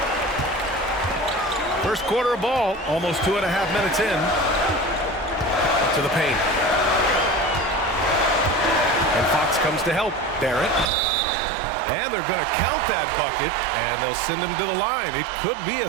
First quarter of ball, almost 2.5 minutes in. To the paint. And Fox comes to help. Barrett. And they're going to count that bucket, and they'll send him to the line. It could be a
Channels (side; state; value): left; drops out; at 10.9 s